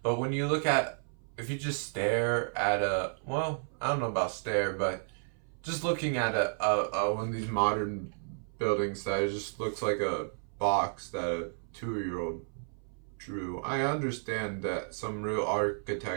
But when you look at, if you just stare at a, well, I don't know about stare, but just looking at a one of these modern buildings that just looks like a box that a 2-year-old drew. I understand that some real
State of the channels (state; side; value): silent; left; 56 dB below the other